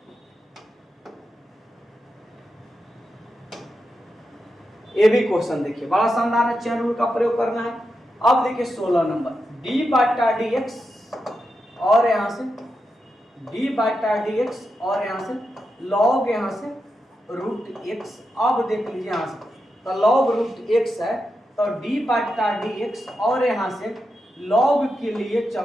ये भी क्वेश्चन देखिए बड़ा शानदार है, चैन रूल का प्रयोग करना है। अब देखिए 16 नंबर, डी बाटा डी एक्स और यहाँ से डी बाटा डी एक्स और यहाँ से लॉग यहाँ से रूट एक्स। अब देख लीजिए यहाँ से तो लॉग रूट एक्स है, तो डी बाटा डी एक्स और यहाँ से लॉग के लिए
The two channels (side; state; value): both; normal; correlation 0.87